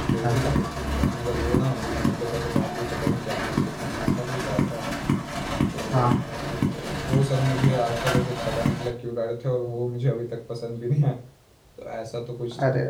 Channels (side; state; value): both; identical; correlation 1.00